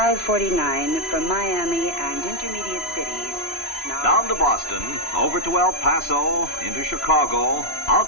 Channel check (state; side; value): late; right; 3.0 ms